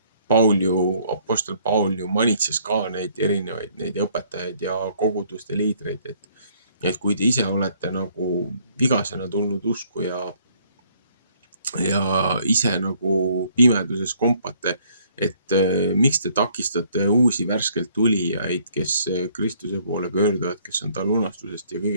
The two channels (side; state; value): both; inverted; correlation -0.64